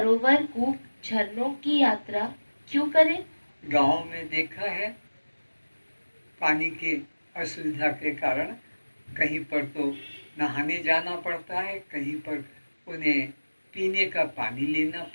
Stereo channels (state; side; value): inverted; both; correlation -1.00